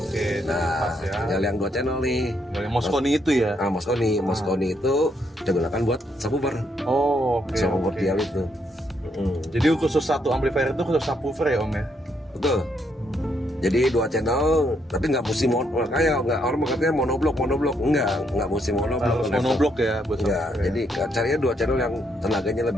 Nah, Pas ya. tinggal yang 2 channel nih. Yang Mosconi itu ya. Mosconi itu kita gunakan buat subwoofer. Oh, oke. Subwoofer oke. dial itu. Jadi khusus satu amplifier itu khusus subwoofer ya Om ya. Betul. Jadi 2 channel, tapi nggak mesti kayak nggak orang katanya monoblok, nggak mesti monoblok. Harus monoblok ya buat Enggak, subwoofer. jadi carinya 2 channel yang tenaganya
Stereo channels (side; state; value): both; normal; correlation 0.75